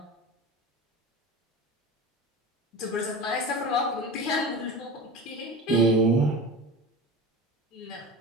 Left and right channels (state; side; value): normal; both; correlation 0.31